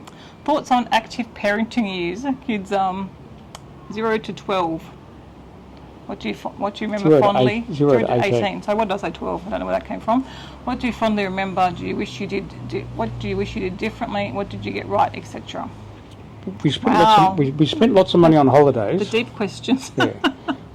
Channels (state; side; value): identical; both; correlation 1.00